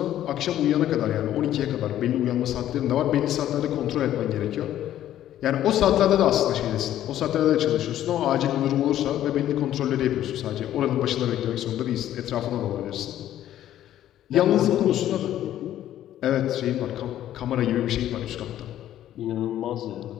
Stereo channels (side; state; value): right; quieter; 12.2 dB